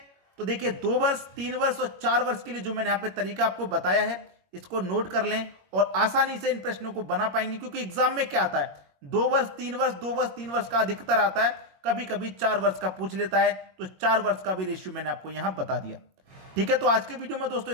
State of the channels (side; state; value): left; late; 21 ms